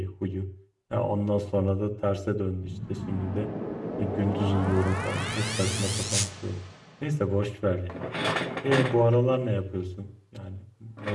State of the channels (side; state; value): both; identical; correlation 1.00